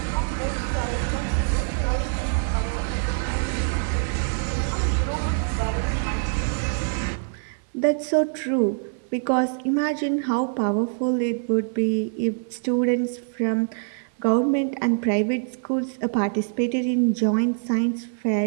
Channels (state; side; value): silent; left; 62 dB below the other